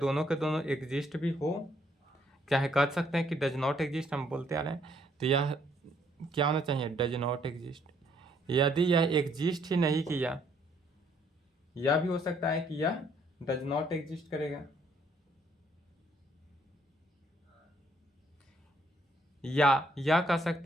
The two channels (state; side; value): normal; both; correlation 0.67